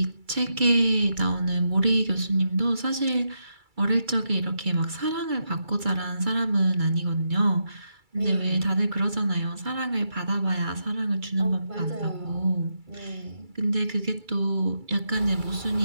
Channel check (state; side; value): late; left; 2.3 ms